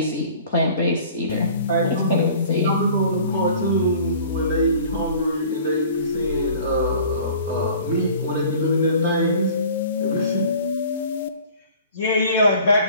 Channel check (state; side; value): inverted; both; correlation -0.47